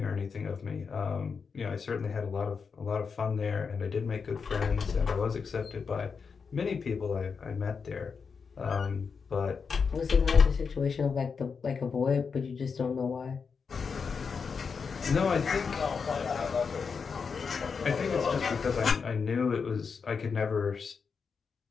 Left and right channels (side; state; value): right; quieter; 5.6 dB